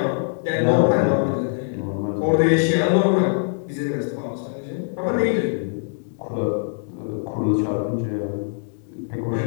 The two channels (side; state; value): right; silent; 64 dB below the other